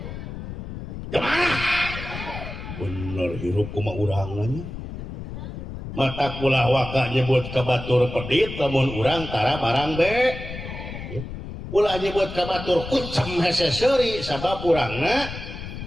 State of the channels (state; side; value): noise; left; rumble, 9 dB below the sound